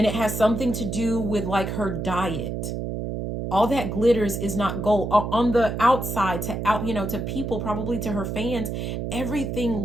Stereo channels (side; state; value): right; noise; hum, 4 dB below the sound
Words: it has something to do with like her diet. All that glitters is not gold. On the outside, you know, to people, probably to her fans,